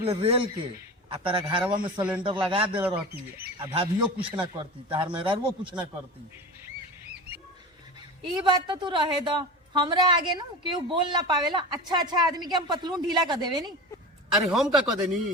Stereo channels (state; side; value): normal; both; correlation 0.30